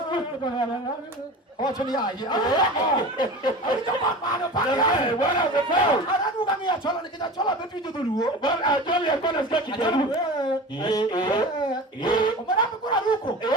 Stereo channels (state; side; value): normal; both; correlation 0.34